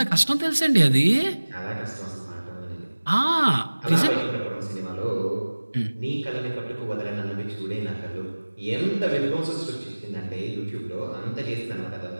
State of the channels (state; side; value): inverted; both; correlation -1.00